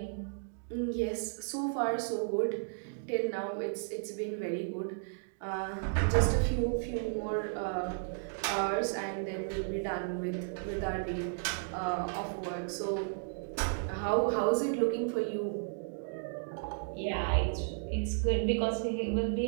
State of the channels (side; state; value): left; silent; digital silence